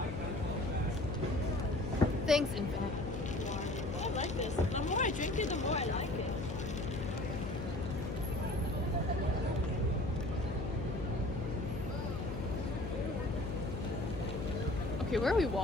Thanks, Infinite. I like this. The more I drink it, the more I like it. Okay, where are we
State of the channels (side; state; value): left; noise; hum, 5 dB below the sound